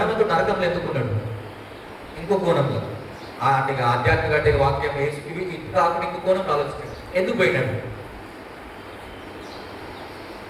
నరకంలో ఎందుకున్నాడు? ఇంకో కోణంలో, అంటే ఆధ్యాత్మిక అంటే వాక్యం వేసి ఇవి ఇది కాకుండా ఇంకో కోణంలో ఆలోచించండి. ఎందుకు పోయినాడు?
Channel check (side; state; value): both; identical; correlation 1.00